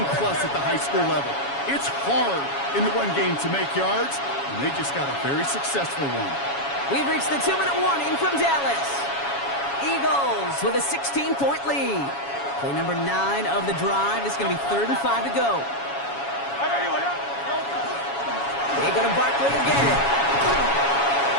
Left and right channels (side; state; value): right; late; 7.2 ms